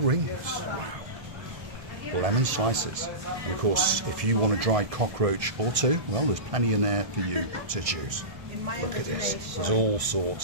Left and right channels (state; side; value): late; left; 1.7 ms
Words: wow. Lemon slices. And of course, if you want a dried cockroach or two, well, there's plenty in there for you to choose. Look at this. There's all